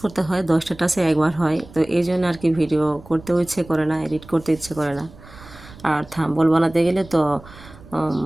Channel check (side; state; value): right; noise; rumble, 20 dB below the sound